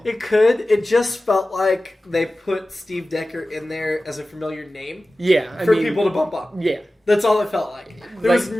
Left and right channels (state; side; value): normal; both; correlation 0.96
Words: It could. It just felt like they put Steve Decker in there as a familiar name Yeah, for people to bump up. Yeah, That's all it felt like. There